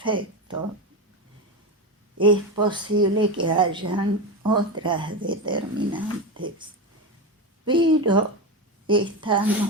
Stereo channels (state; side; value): normal; both; correlation 0.17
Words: Es posible que hayan otras determinantes, pero